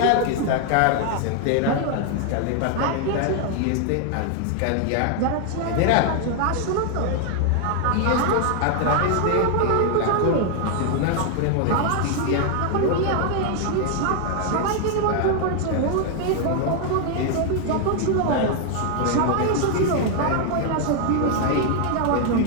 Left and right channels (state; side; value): different; both; correlation 0.00